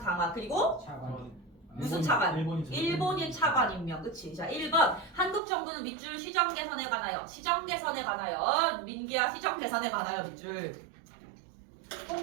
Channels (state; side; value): drops out; left; at 5.4 s